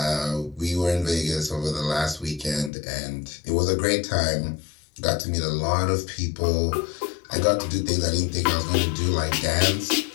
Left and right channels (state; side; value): drops out; right; at 2.7 s